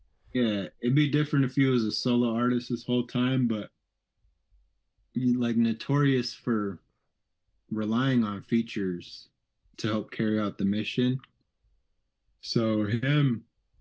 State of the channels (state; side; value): identical; both; correlation 1.00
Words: Yeah, it'd be different if you was a solo artist this whole time, but you like notorious for relying on features to help carry out the mission. So him